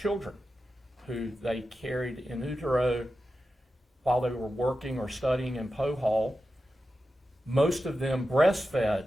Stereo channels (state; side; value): normal; both; correlation 0.91